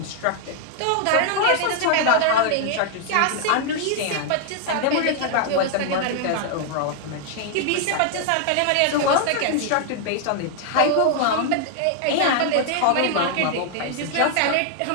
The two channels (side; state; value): both; different; correlation 0.00